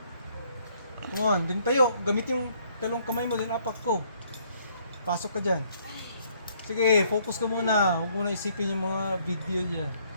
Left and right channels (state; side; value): inverted; both; correlation -0.66